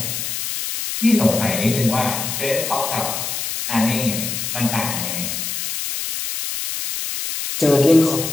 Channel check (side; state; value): left; noise; hiss, 4 dB below the sound